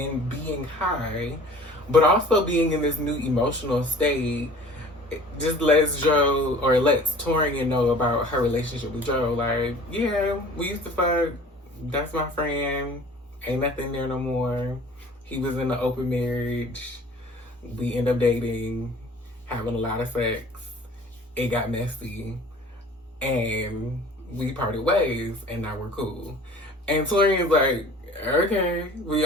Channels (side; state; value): both; normal; correlation 0.47